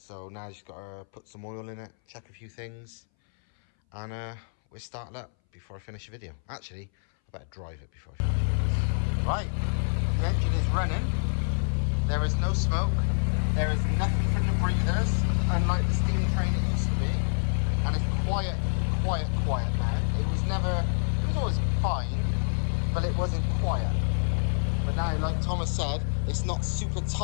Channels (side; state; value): right; silent; 59 dB below the other